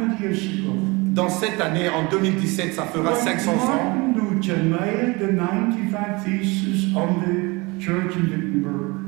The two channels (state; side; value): quieter; left; 25.6 dB